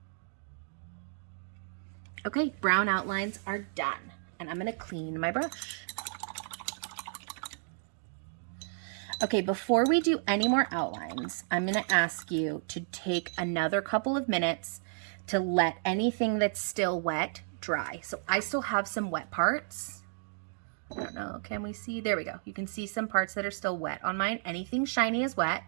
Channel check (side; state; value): left; silent; digital silence